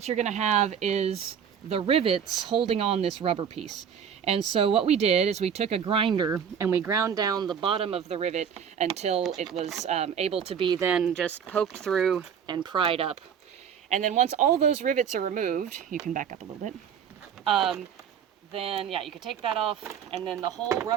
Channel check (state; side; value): quieter; left; 7.8 dB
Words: you're going to have is the rivets holding on this rubber piece. And so what we did is we took a grinder and we ground down the bottom of the rivet until it was able to be then just poked through and pried up. And then once all those rivets are removed, you can back up a little bit, then yeah, you can take that off, and then the whole